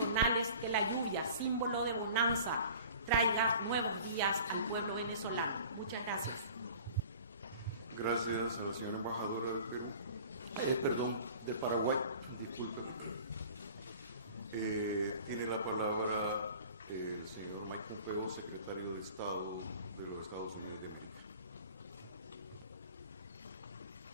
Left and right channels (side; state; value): both; inverted; correlation -0.44